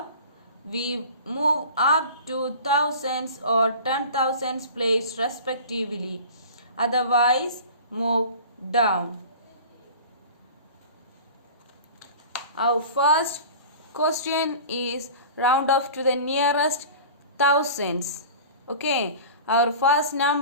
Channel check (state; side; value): inverted; both; correlation -0.39